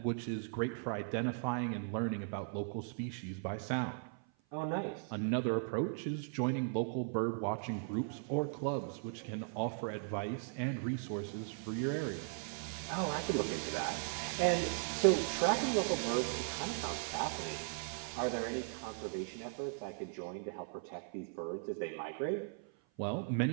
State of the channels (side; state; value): left; silent; 52 dB below the other